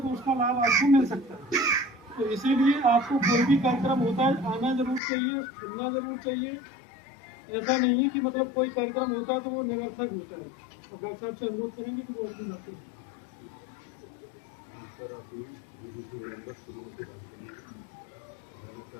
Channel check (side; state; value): right; drops out; at 5.0 s